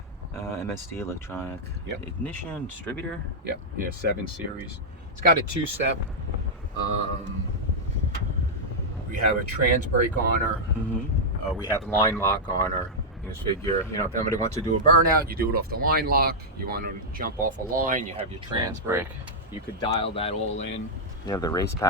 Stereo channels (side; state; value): both; normal; correlation -0.06